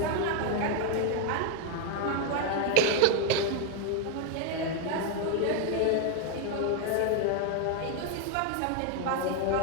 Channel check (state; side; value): different; both; correlation 0.01